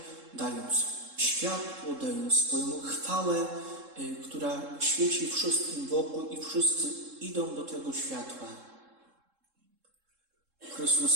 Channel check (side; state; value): left; late; 3.7 ms